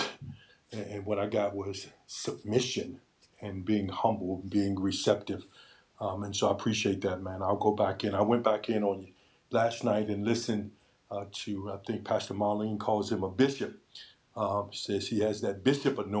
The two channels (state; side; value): identical; both; correlation 1.00